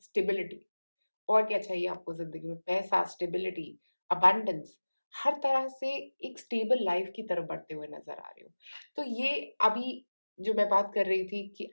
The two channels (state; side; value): inverted; both; correlation -1.00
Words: स्टेबिलिटी। और क्या चाहिए आपको ज़िंदगी में? पैसा, स्टेबिलिटी, अबंडेंस, हर तरह से एक स्टेबल लाइफ़ की तरफ बढ़ते हुए नज़र आ रहे हो। तो ये अभी जो मैं बात कर रही थी कि